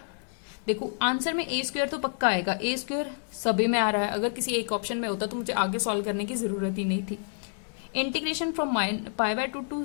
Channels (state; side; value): silent; right; digital silence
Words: देखो आंसर में a स्क्वायर तो पक्का आएगा, a स्क्वायर सभी में आ रहा है। अगर किसी एक ऑप्शन में होता तो मुझे आगे सॉल्व करने की जरूरत ही नहीं थी। Integration from π/2 to